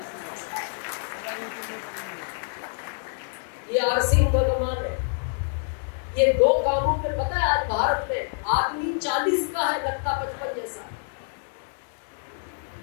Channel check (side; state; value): right; silent; 59 dB below the other